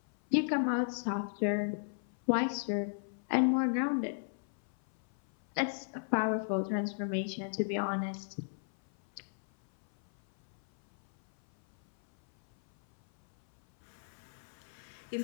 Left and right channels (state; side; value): silent; right; 54 dB below the other